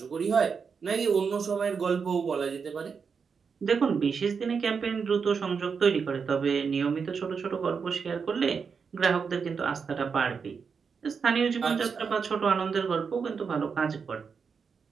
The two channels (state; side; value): quieter; left; 5.8 dB